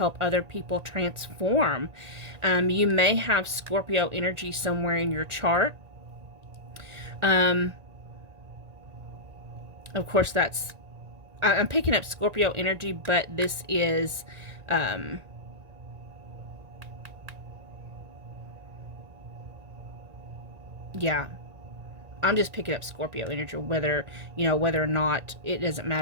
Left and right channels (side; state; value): left; late; 1.9 ms